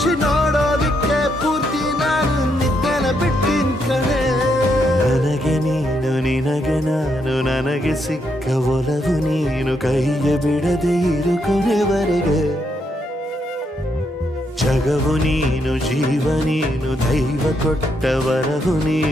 ನೋಡೋದಿಕ್ಕೆ ಪೂರ್ತಿ ನಾನು ನಿದ್ದೆನ ಬಿಟ್ಟಿನ ಕಣೆ ನನಗೆ ನೀನು ನಿನಗೆ ನಾನು ನನಗೆ ಸಿಕ್ಕ ಒಲವು ನೀನು ಕೈಯ ಬಿಡದೆ ಇರು ಕೊನೆವರೆಗೆ ಜಗವು ನೀನು ಜೀವ ನೀನು ದೈವ ಕೊಟ್ಟ ವರವು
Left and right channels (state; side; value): normal; both; correlation 0.77